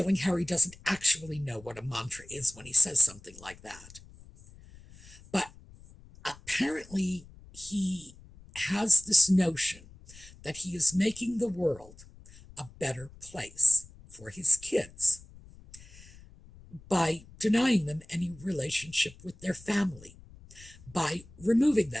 Harry doesn't actually know what a mantra is when he says something like that. But apparently he has this notion that he is making the world a better place for his kids by denying them any relationship with their family, by removing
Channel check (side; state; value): left; noise; rumble, 21 dB below the sound